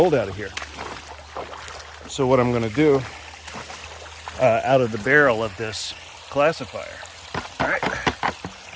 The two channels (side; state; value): both; identical; correlation 1.00